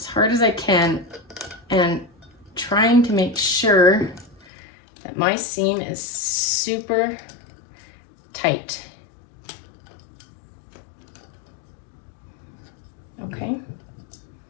hard as I can and trying to make sure that my seam is super tight. Okay.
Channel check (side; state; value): right; drops out; at 4.5 s